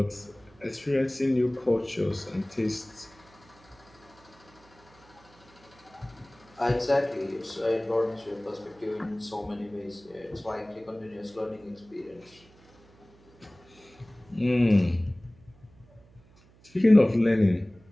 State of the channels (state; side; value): noise; right; hum, 27 dB below the sound